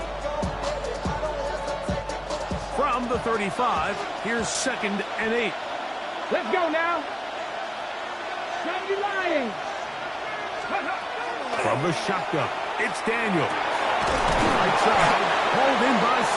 From the 35, here's 2nd and 8. Let's go now. Lions. From the shotgun, it's Daniel. Right side, hauled in by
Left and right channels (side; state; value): both; identical; correlation 1.00